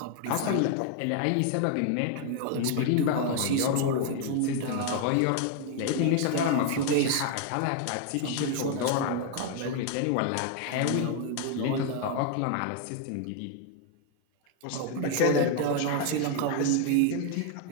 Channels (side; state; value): both; different; correlation 0.00